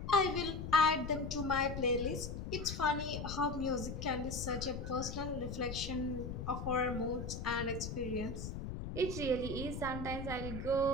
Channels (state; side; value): noise; left; rumble, 6 dB below the sound